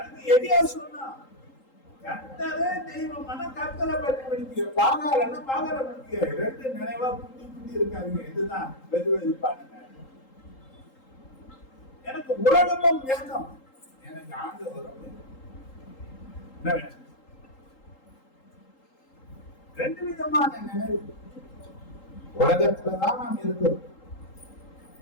எடியா சொன்னா கர்த்தரே தெய்வமான கர்த்தரை பற்றி படிக்க பாகாரன்னா பாகார படிக்க ரெண்டு நினைவா குட்டி குட்டி இருக்காங்க. இதுதான் வெதுவெதுப்பானுங்க. எனக்கு உலகமும் வேணும், எனக்கு ஆண்டவரும் என்ன வேணும்? ரெண்டு விதமான நினைவு. உலகத்துலதான் நாம் இருக்கிறோம்.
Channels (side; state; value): right; late; 3.8 ms